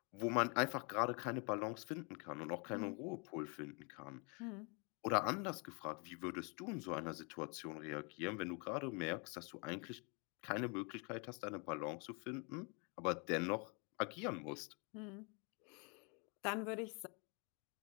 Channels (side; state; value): right; quieter; 33.5 dB